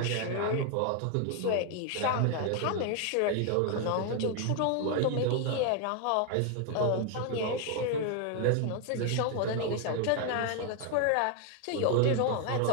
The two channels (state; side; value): different; both; correlation 0.00